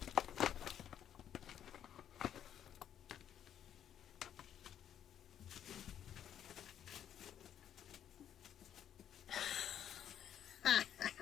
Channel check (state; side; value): quieter; right; 9.9 dB